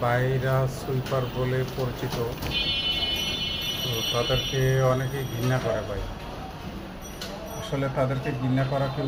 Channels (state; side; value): identical; both; correlation 1.00